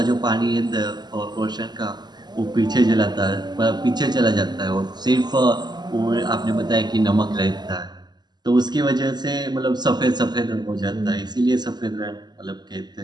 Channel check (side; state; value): left; late; 0.21 ms